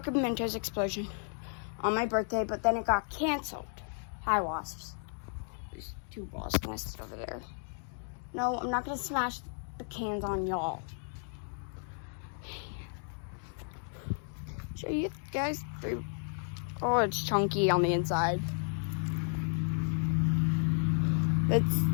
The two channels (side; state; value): right; silent; 56 dB below the other